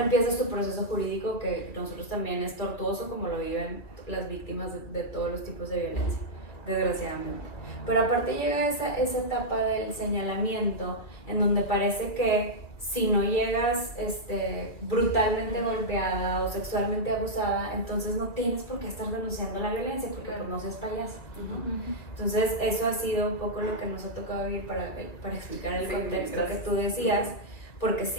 empieza su proceso jurídico que nosotros también es tortuoso como lo viven las víctimas de todos los tipos de violencia, desgraciadamente. Pero aparte llega esa etapa del señalamiento en donde parece que si no llegas brutalmente golpeada o sexualmente abusada, entonces no tienes por qué estar denunciando la violencia porque pues no seas payasa, ¿no? Entonces eso ha sido un poco lo que nos ha tocado vivir para explicar el contexto que tú decías, porque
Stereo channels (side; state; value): right; late; 2.4 ms